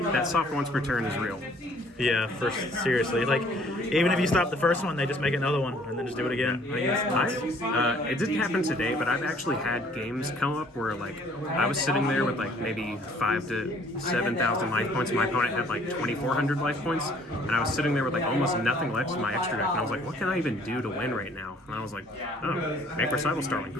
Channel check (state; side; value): normal; both; correlation 0.58